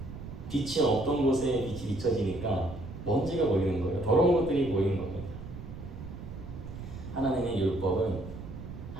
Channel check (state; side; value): noise; right; rumble, 11 dB below the sound